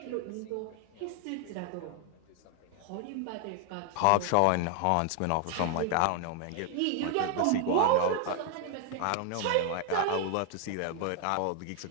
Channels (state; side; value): different; both; correlation 0.00